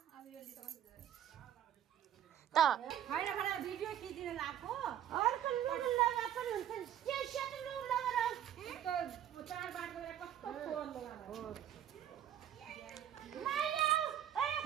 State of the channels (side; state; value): left; quieter; 10.6 dB